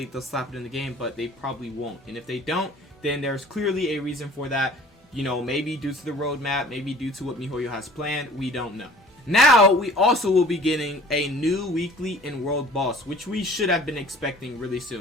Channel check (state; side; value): normal; both; correlation 0.48